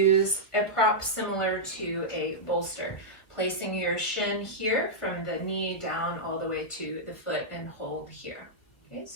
a prop similar to a bolster, placing your shin here from the knee down all the way to the foot and hold here. Okay,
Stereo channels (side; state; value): right; late; 1.4 ms